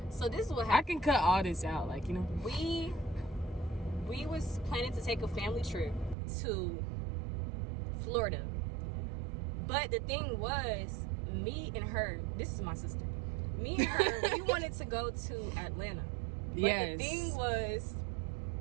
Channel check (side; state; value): left; drops out; at 6.2 s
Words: so this is what I happened. can cut all this out, like, you know. We was planning to take a family trip to Florida. But the thing was, me and her, this is my sister. Me and her, we wanted to go to Atlanta. But Yes. the thing was,